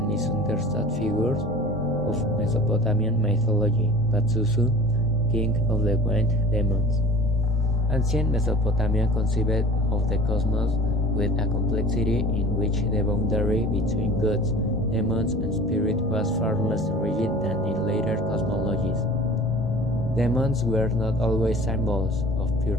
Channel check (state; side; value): normal; both; correlation 0.42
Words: misunderstood figures of Mesopotamian mythology, Pazuzu, king of the wind demons. Ancient Mesopotamia conceived of the cosmos with a complexity in which the boundary between gods, demons, and spirit was far less rigid than in later cosmologies. Demons were not always symbols of pure